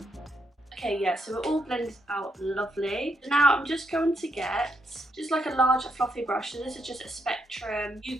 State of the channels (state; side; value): normal; both; correlation 0.78